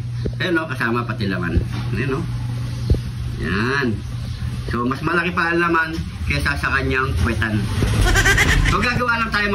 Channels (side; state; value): both; identical; correlation 1.00